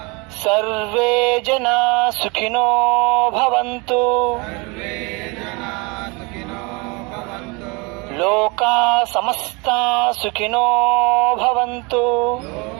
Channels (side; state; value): left; quieter; 28.5 dB